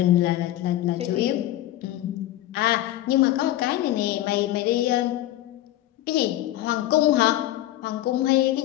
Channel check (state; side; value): quieter; right; 14.5 dB